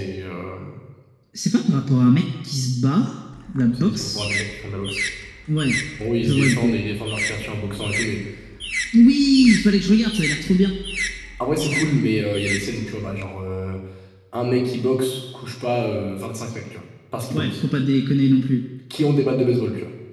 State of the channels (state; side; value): identical; both; correlation 1.00